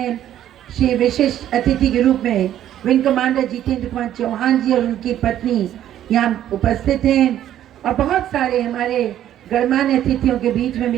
श्री विशिष्ट अतिथि के रूप में विंग कमांडर जितेंद्र कुमार चौहान जी और उनकी पत्नी यहाँ उपस्थित हैं, और बहुत सारे हमारे गणमान्य अतिथियों के बीच में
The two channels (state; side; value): quieter; left; 11.6 dB